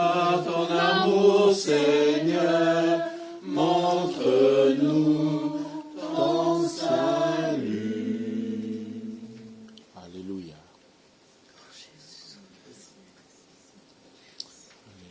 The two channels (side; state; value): both; identical; correlation 1.00